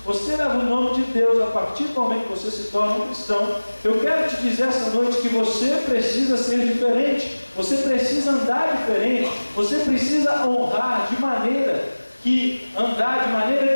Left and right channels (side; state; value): both; inverted; correlation -1.00